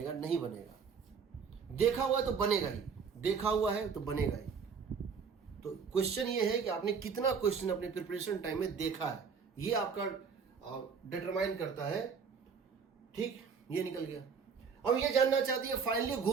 नहीं बनेगा। देखा हुआ है तो बनेगा ही, देखा हुआ है तो बनेगा ही। तो क्वेश्चन ये है कि आपने कितना क्वेश्चन अपने प्रिपरेशन टाइम में देखा है, ये आपका डिटरमाइन करता है, ठीक। ये निकल गया। अब ये जानना चाहती है फाइनली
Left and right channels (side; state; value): left; quieter; 6.0 dB